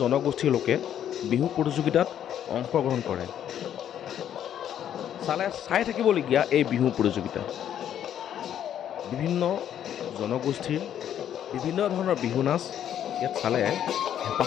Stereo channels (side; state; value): right; quieter; 10.1 dB